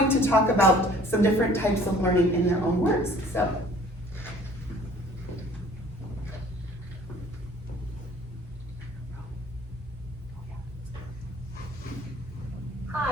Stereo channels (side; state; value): both; normal; correlation 0.53